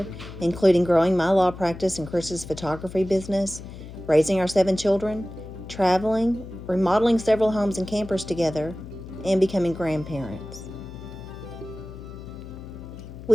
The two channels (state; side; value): noise; left; hum, 13 dB below the sound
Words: including growing my law practice and Chris's photography business, raising our 7 children, traveling, remodeling several homes and campers together, and becoming grandparents.